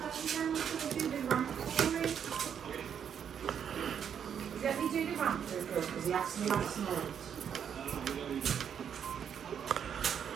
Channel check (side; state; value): left; quieter; 8.2 dB